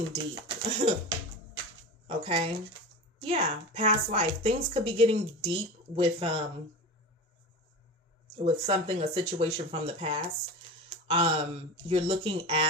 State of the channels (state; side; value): normal; both; correlation 0.29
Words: deep. Okay. Yeah. Past life. Things could be getting deep with something, a situation from the past. You're looking